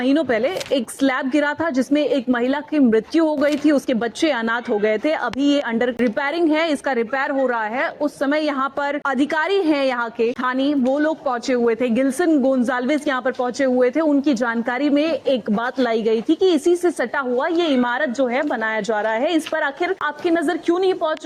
पहले एक स्लैब गिरा था जिसमें एक महिला की मृत्यु हो गई थी। उसके बच्चे अनाथ हो गए थे। अभी ये अंडर रिपेयरिंग है, इसका रिपेयर हो रहा है। उस समय यहाँ पर अधिकारी है यहाँ के स्थानीय, वो लोग पहुंचे हुए थे। गिल्सन गोंजाल्विस यहाँ पर पहुंचे हुए थे। उनकी जानकारी में एक बात लाई गई थी कि इसी से सटा हुआ ये इमारत जो है बनाया जा रहा है। इस पर आखिर आपकी नजर क्यों नहीं पहुंच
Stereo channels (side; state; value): both; identical; correlation 1.00